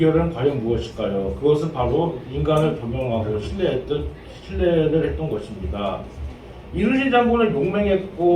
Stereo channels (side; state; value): both; identical; correlation 1.00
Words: 과연 무엇일까요? 그것은 바로 인간을 겸용하고 신뢰를 했던 것입니다. 이순신 장군은